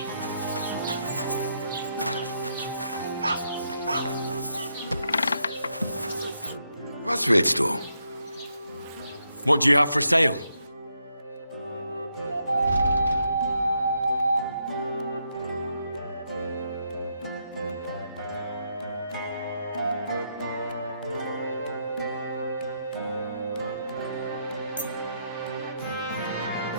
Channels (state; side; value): inverted; both; correlation -0.79